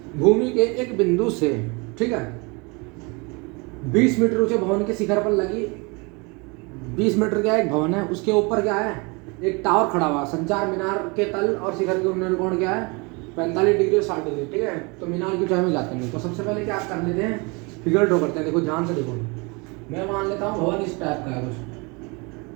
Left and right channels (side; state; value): left; quieter; 29.0 dB